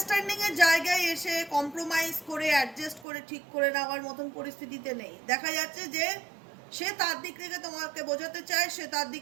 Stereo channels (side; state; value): left; drops out; at 3.1 s